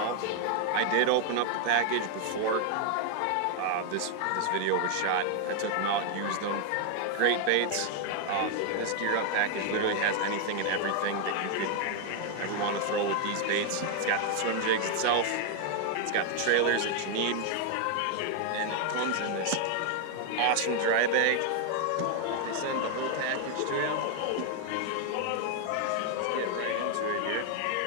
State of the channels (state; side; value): different; both; correlation 0.00